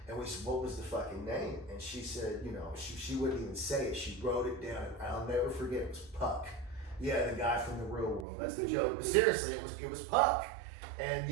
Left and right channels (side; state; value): left; drops out; at 8.2 s